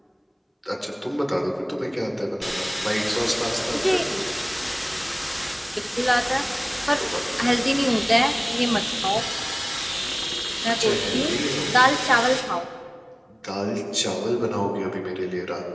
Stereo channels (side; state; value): both; identical; correlation 1.00